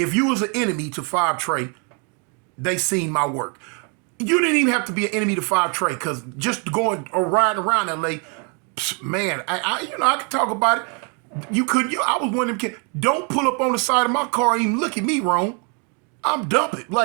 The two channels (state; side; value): quieter; left; 36.4 dB